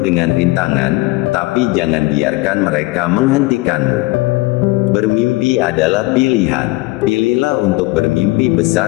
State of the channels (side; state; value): right; quieter; 20.7 dB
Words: rintangan, tapi jangan biarkan mereka menghentikanmu. Bermimpi adalah pilihan. Pilihlah untuk bermimpi